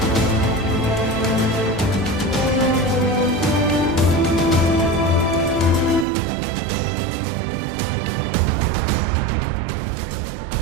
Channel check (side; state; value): left; drops out; at 6.1 s